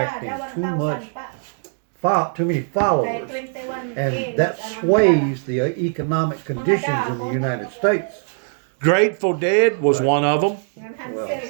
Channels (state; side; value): silent; left; digital silence